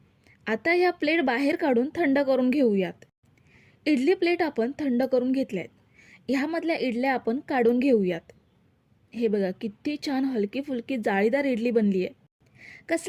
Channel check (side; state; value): both; identical; correlation 1.00